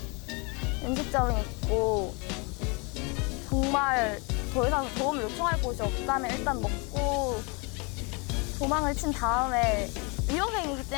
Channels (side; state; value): right; quieter; 31.1 dB